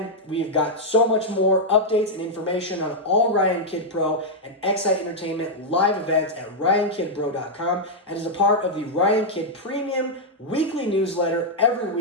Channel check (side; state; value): both; normal; correlation -0.03